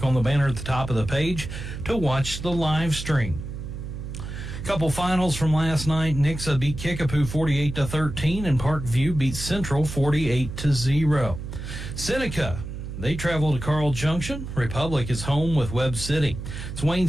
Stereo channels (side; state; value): right; noise; hum, 8 dB below the sound